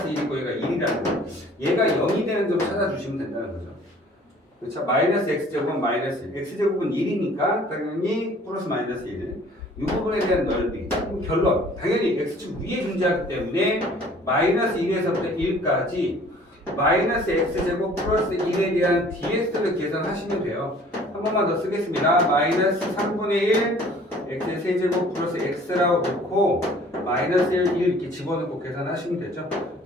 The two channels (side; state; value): both; normal; correlation 0.52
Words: 1이고 얘가 1이라는 거. 얘가 0이 되는 점 찾아주시면 된다는 거죠. 그렇죠? 마이너스 x제곱은 마이너스 1. x제곱은 1이니까 당연히 플러스 마이너스 1. 이 부분에 대한 넓이. 결론. 당연히 x축 위에 존재하기 때문에 마이너스 1에서부터 1까지 마이너스 x제곱 플러스 1에 대한 dx를 계산하시면 돼요. 한 번만 더 쓰겠습니다. 마이너스 3분의 1 x의 세제곱 플러스 x라고 놓고 마이너스 1 이렇게 집어넣고 계산하시면 되죠.